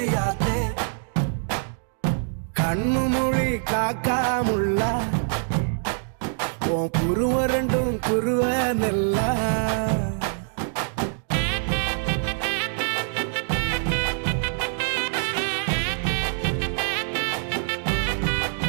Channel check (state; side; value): silent; left; digital silence